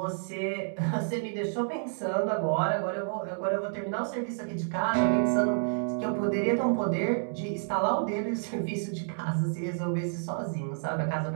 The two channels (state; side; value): silent; left; digital silence